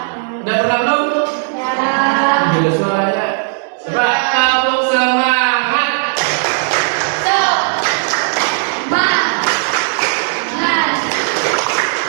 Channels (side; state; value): left; silent; 65 dB below the other